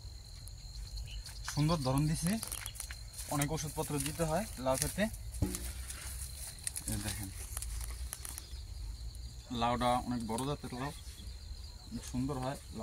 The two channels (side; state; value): both; identical; correlation 1.00